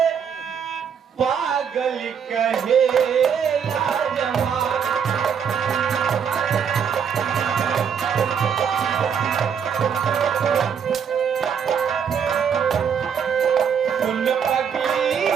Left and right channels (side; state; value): left; quieter; 7.3 dB